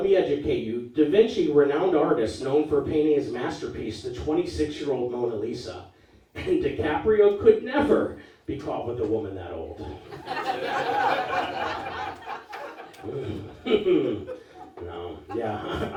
me educate you. Da Vinci, renowned artist, known for painting his masterpiece, the 26-year-old Mona Lisa. And DiCaprio could never be caught with a woman that old. No, yeah,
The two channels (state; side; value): identical; both; correlation 1.00